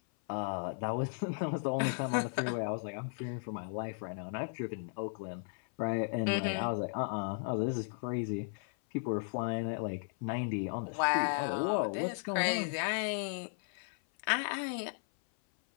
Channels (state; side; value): silent; right; 54 dB below the other